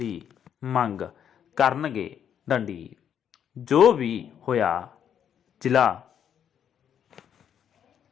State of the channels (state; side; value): quieter; right; 8.8 dB